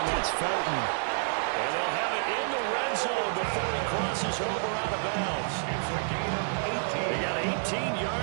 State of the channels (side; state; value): left; silent; digital silence